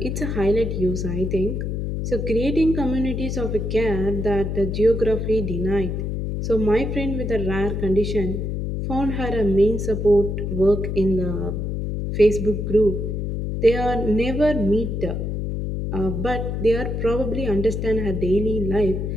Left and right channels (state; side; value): noise; left; hum, 2 dB below the sound